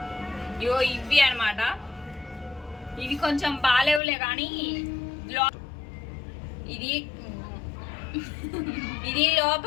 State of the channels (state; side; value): drops out; right; at 4.0 s